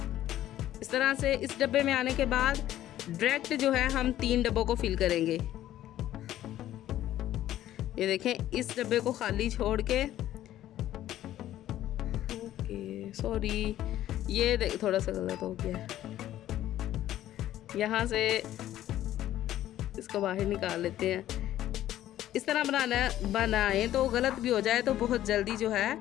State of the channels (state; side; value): quieter; right; 13.1 dB